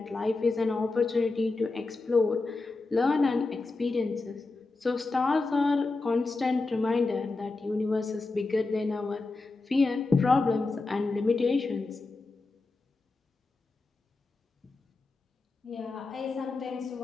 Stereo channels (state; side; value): quieter; right; 3.5 dB